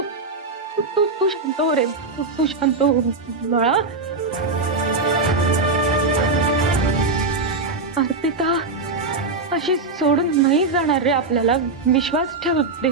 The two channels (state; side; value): quieter; left; 3.7 dB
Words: शांत हो रे, तू शांत हो बाळा. अर्पिता अशी सोडून नाही जाणार रे आपल्याला. विश्वास ठेव